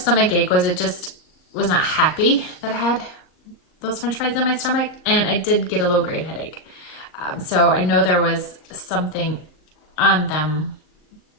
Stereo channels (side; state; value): right; late; 39 ms